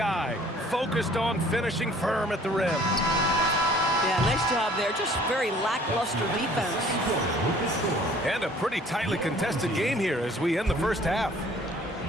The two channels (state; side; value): normal; both; correlation 0.54